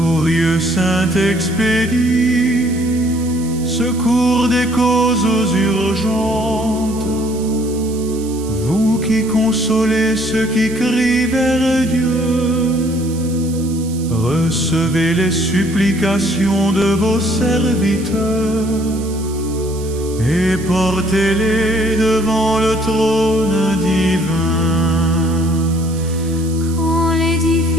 Saint-Expédie, secours des causes urgentes, vous qui consolez ceux qui crient vers Dieu, recevez les supplications de vos serviteurs et portez-les devant le trône divin. Quand les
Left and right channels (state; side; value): noise; right; hiss, 17 dB below the sound